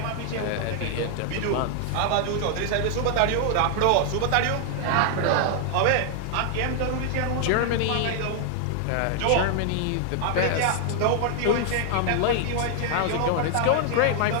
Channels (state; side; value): different; both; correlation 0.00